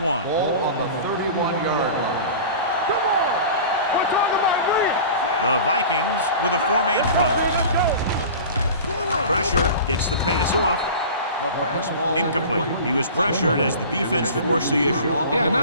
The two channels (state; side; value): inverted; both; correlation -0.37